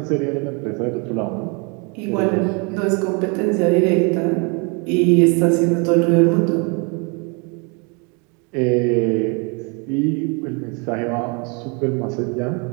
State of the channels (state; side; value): quieter; left; 32.9 dB